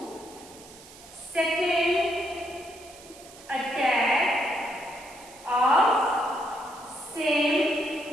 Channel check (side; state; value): right; noise; hiss, 20 dB below the sound